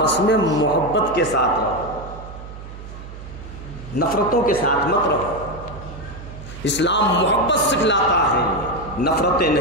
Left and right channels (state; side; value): noise; right; hum, 13 dB below the sound